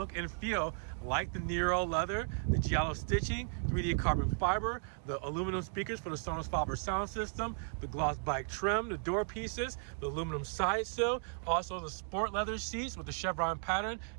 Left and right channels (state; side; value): silent; left; 54 dB below the other